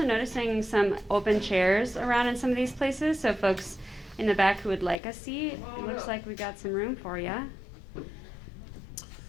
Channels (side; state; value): right; drops out; at 5.0 s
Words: noticing some open chairs around in some of these places, so folks in the back who would like a seat, it looks like we got some room for you.